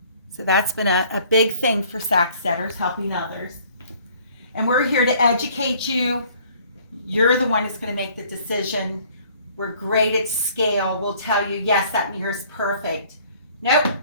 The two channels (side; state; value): both; inverted; correlation -0.56